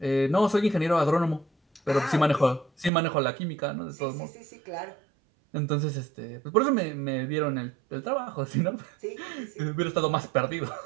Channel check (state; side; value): drops out; left; at 2.9 s